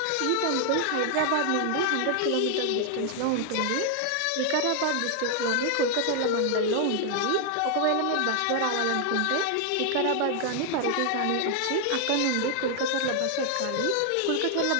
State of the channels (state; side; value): different; both; correlation 0.00